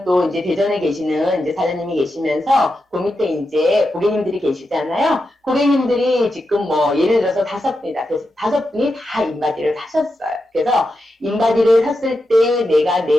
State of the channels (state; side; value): normal; both; correlation 0.88